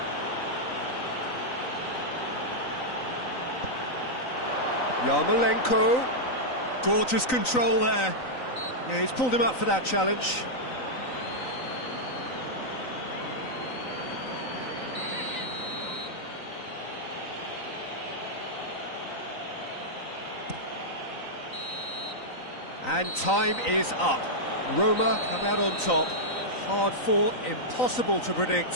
Yarmolenko, gorgeous control there. Yeah, he's pulled him up for that challenge. And time is up. Roma come out on top. Hard fought, impossible to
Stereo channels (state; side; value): late; right; 3.9 ms